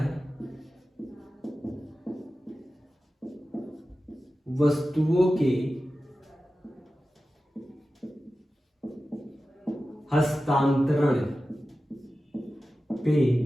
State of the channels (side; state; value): both; normal; correlation 0.94